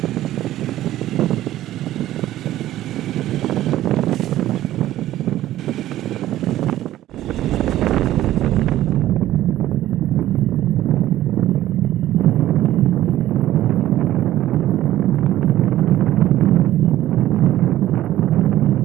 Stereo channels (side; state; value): left; quieter; 13.9 dB